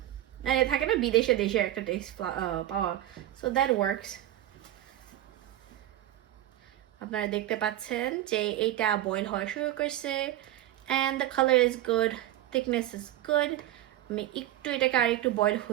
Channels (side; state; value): left; quieter; 13.7 dB